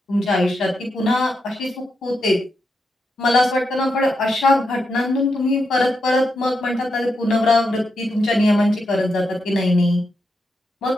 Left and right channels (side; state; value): both; normal; correlation 0.84